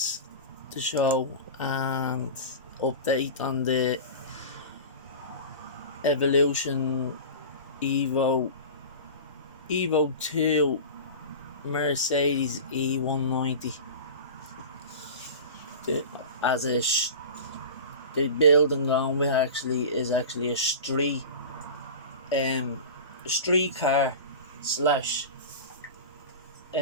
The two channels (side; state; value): both; inverted; correlation -0.33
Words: to show, and update on the Evolution EVO2 Mercedes E190. The build I'm going with is actually a street car slash